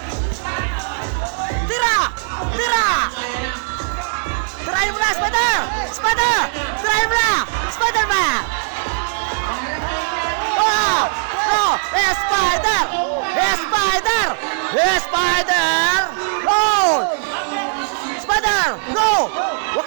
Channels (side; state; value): left; silent; digital silence